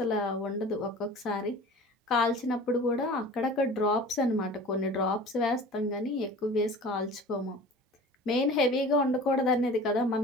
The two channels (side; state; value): both; normal; correlation 0.41